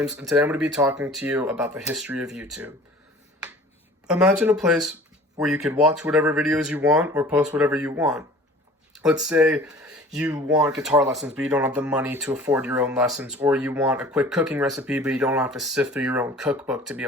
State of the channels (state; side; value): normal; both; correlation 0.46